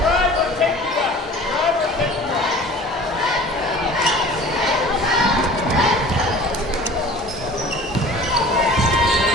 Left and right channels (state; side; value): normal; both; correlation 0.44